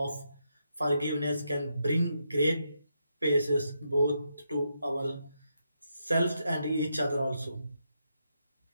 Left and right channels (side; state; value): both; inverted; correlation -0.82